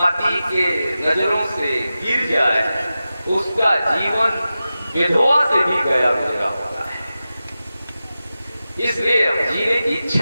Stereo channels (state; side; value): inverted; both; correlation -0.93